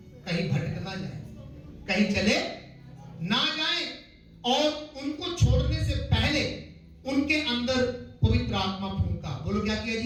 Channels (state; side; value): identical; both; correlation 1.00